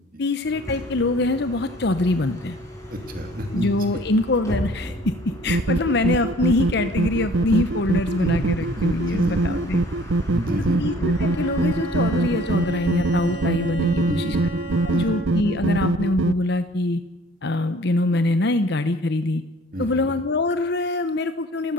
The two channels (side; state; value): both; normal; correlation 0.53